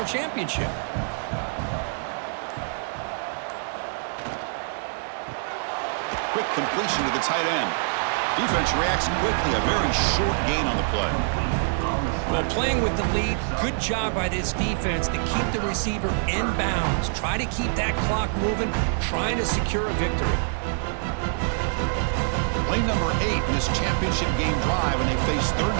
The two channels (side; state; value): left; silent; digital silence